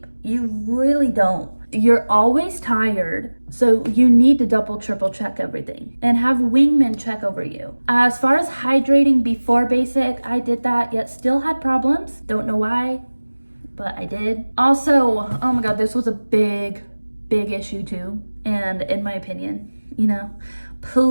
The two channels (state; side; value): inverted; both; correlation -1.00